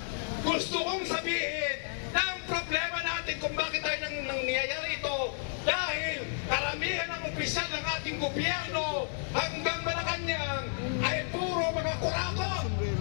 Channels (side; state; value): right; silent; digital silence